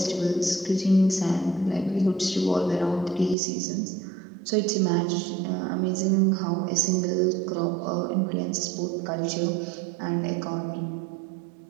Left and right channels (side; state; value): left; drops out; at 3.4 s